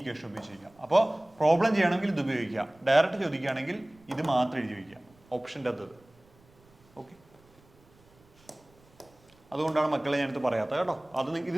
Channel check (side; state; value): right; noise; rumble, 30 dB below the sound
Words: ഉപയോഗിച്ചിരിക്കുക. അപ്പോൾ പ്രോബ്ലം ചെയ്യണമെങ്കിൽ ഇത് ഉപയോഗിക്കുക. ഡയറക്റ്റ് ചോദിക്കുകയാണെങ്കിൽ ഇത് മാത്രം എഴുതി വയ്ക്കുക, ഓപ്ഷൻ്റെ അത്. ഓക്കെ, അതുകൊണ്ടാണ് മക്കളെ ഞാനിത് പറയാത്തത് കേട്ടോ. ഇത്